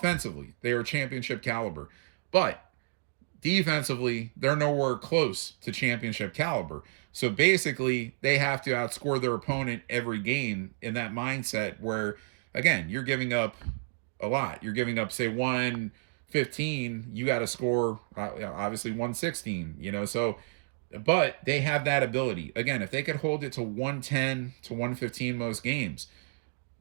they are championship caliber. But defensively, they're nowhere close to championship caliber. So basically, they have to outscore their opponent every game in that mindset where, again, you're giving up a lot. You're giving up, say, 115. You got to score, obviously, 116, so, but they have that ability. Again, if they could hold it to 110 to 115 most games,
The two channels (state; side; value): silent; left; digital silence